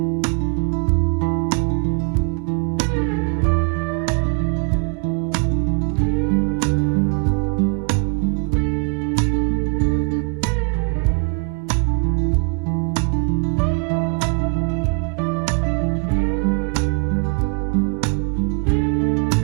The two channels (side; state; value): left; quieter; 35.9 dB